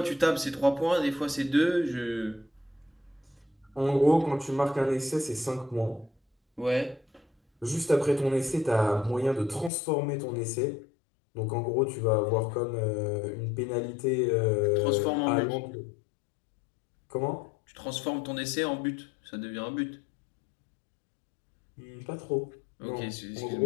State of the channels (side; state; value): right; drops out; at 9.7 s